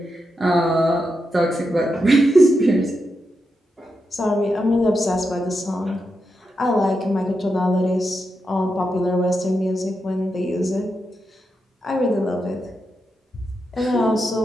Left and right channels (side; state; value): both; normal; correlation 0.86